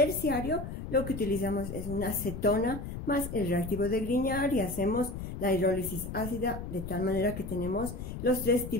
lo que utilizamos es una cetona más el reactivo de Grignard y hacemos la hidrólisis ácida de tal manera que tenemos los tres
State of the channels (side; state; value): left; noise; rumble, 8 dB below the sound